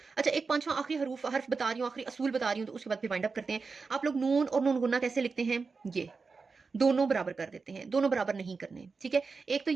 अच्छा, एक पांचवा आखिरी हर्फ बता रही हूँ, आखिरी असूल बता रही हूँ, तो उसके बाद फिर वाइंड अप करते हैं। आप लोग नून और नून गुन्ना कैसे लिखते हैं? ये दोनों बराबर कर देते हैं, दोनों बराबर नहीं करने। ठीक है। एक तो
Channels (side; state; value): left; quieter; 4.6 dB